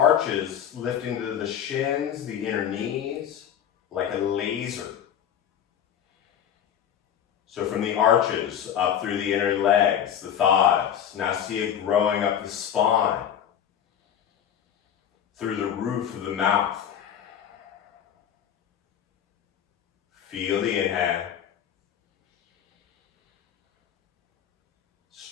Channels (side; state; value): right; quieter; 9.3 dB